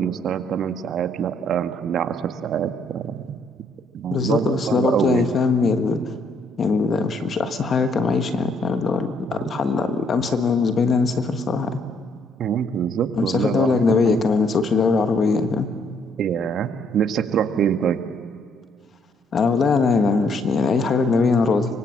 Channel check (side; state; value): both; normal; correlation 0.68